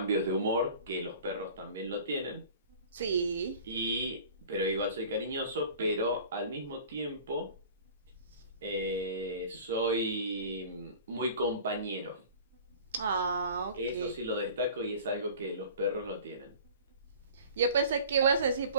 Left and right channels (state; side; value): inverted; both; correlation -0.43